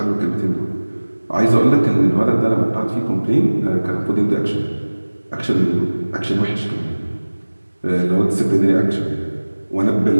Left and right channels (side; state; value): both; inverted; correlation -1.00